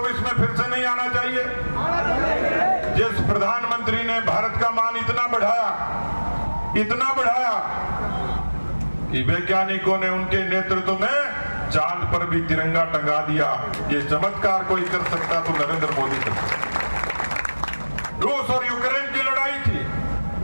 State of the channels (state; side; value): inverted; both; correlation -1.00